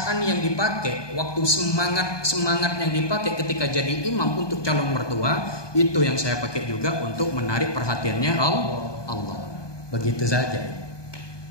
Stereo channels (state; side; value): late; right; 1.2 ms